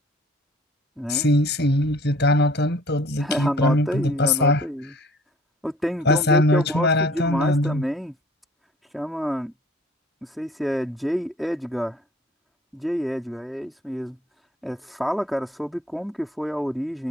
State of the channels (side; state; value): both; normal; correlation 0.52